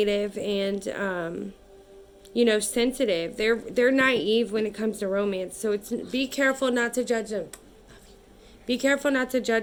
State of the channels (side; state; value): both; identical; correlation 1.00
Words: and sensitive. They're naive when it comes to romance. So be careful not to judge them. Be careful not to